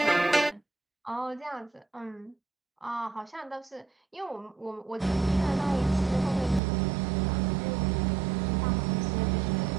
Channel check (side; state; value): left; drops out; at 6.6 s